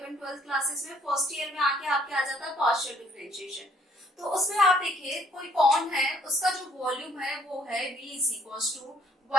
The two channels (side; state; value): both; normal; correlation 0.63